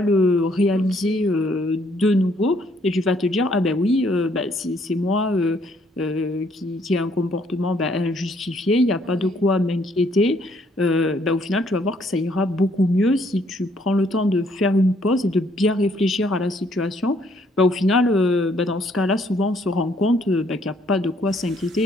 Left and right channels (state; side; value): normal; both; correlation 0.67